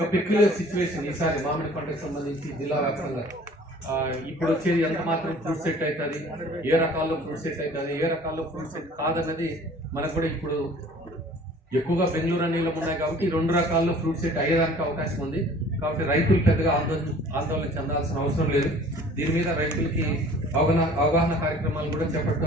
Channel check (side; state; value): both; normal; correlation 0.50